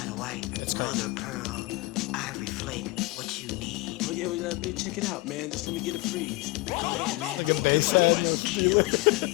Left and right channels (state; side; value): quieter; right; 22.6 dB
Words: white, mother of pearl, ivory flake, what you need. Oh yeah, check it out, man. Just let me get a freeze. Here's Get a bass head and feel it.